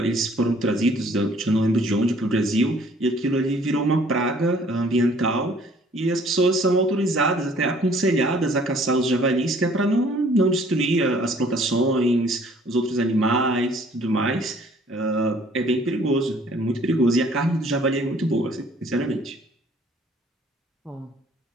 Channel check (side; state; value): both; normal; correlation 0.57